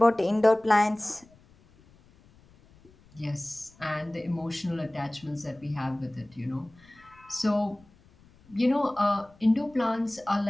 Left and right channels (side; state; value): left; noise; rumble, 28 dB below the sound